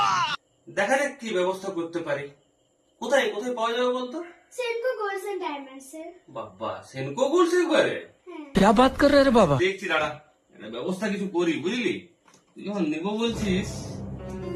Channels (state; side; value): identical; both; correlation 1.00